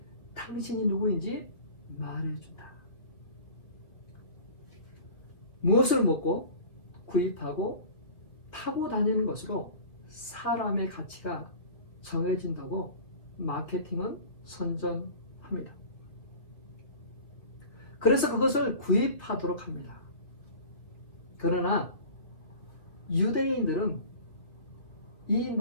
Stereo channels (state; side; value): late; right; 2.4 ms